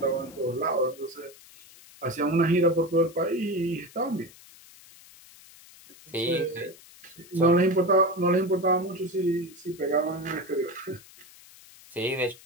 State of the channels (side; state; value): left; noise; hiss, 22 dB below the sound